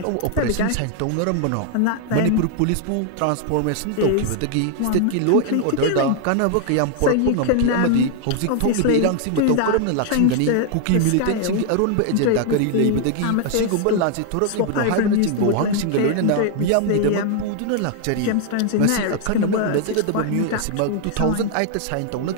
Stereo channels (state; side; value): different; both; correlation 0.00